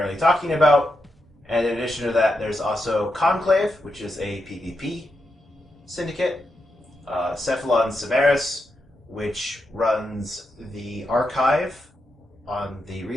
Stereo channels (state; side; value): normal; both; correlation 0.85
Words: talking about. And in addition to that, there's also Conclave, which is a PvP syndicate, Cephalon Severus, which runs the Archive on the